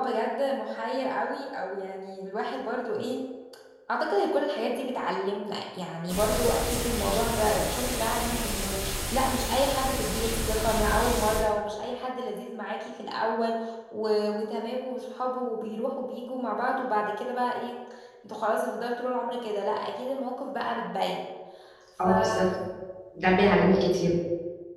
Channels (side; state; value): both; identical; correlation 1.00